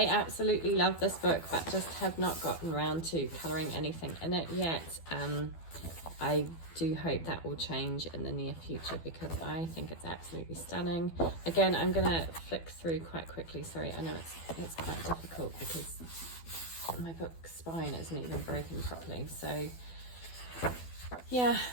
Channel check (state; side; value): late; right; 12 ms